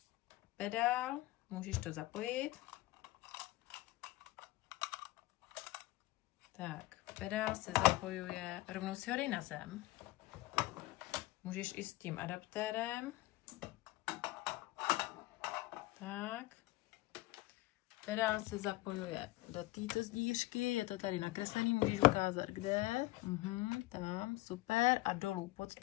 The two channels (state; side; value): quieter; right; 19.1 dB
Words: Pedál, můžeš to zapojit. Tak, pedál se zapojuje, rovnou si ho dej na zem. Můžeš i s tím adaptérem. Tak. Pedál se zapojuje do této zdířky, je to tady nakreslený, můžeš ukázat kde. Tam, super. A dolů pod